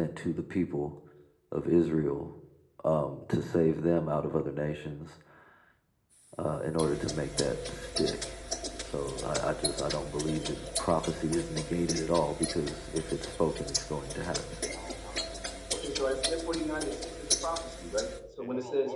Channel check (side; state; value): both; identical; correlation 1.00